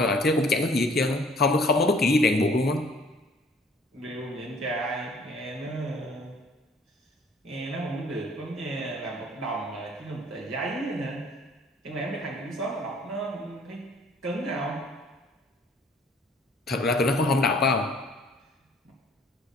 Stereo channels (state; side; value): normal; both; correlation 0.56